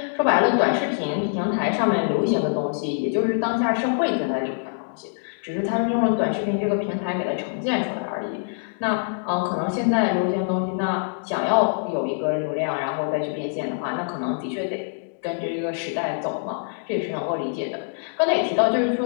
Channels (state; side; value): silent; right; digital silence